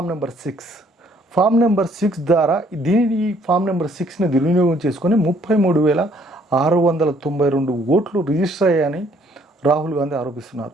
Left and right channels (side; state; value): both; normal; correlation 0.63